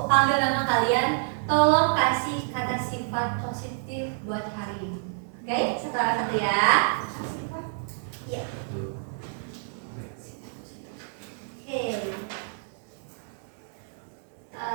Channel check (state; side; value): silent; left; digital silence